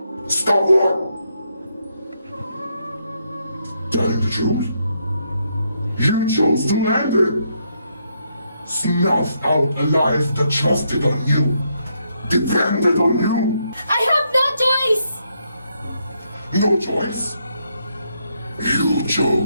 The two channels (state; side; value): inverted; both; correlation -0.77